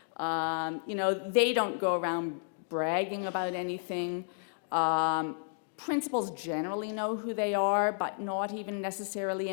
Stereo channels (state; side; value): silent; right; digital silence